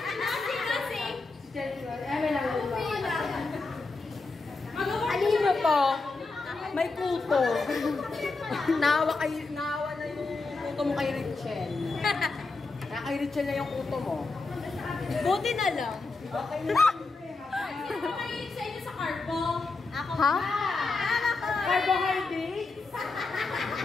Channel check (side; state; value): right; quieter; 3.8 dB